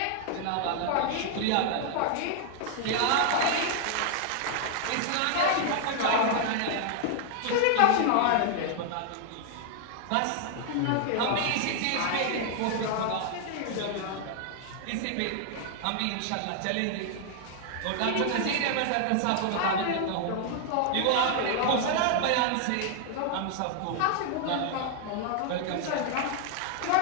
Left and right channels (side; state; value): both; different; correlation 0.00